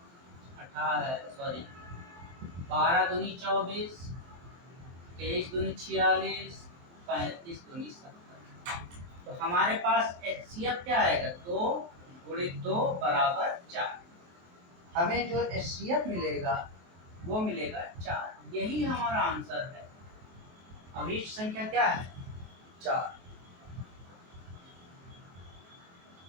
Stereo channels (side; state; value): left; late; 23 ms